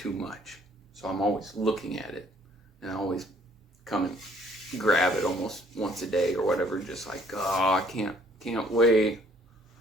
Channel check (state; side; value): normal; both; correlation 0.62